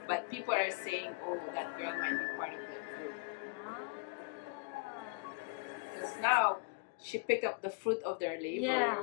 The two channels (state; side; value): quieter; right; 32.1 dB